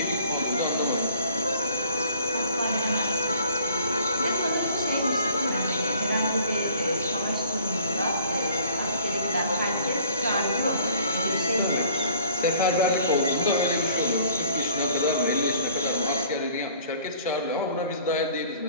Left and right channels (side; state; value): both; inverted; correlation -0.55